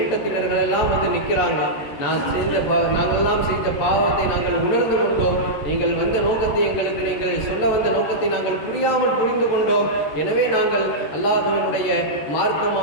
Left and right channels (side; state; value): right; late; 14 ms